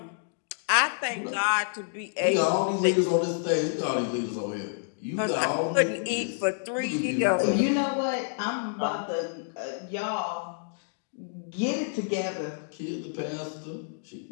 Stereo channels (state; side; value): silent; right; digital silence